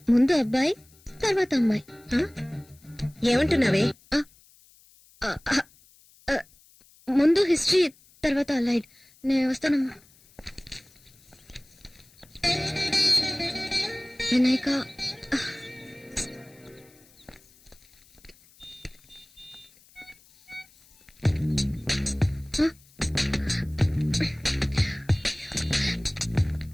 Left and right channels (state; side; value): noise; left; hiss, 28 dB below the sound